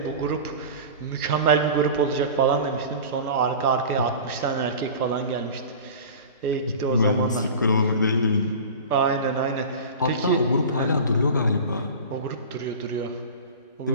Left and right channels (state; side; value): inverted; both; correlation -0.34